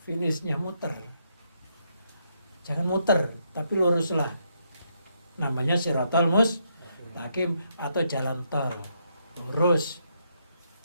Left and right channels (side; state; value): both; inverted; correlation -0.77